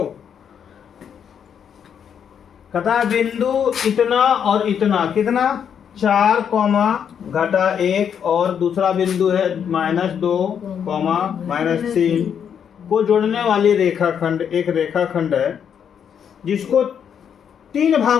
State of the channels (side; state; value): right; quieter; 8.0 dB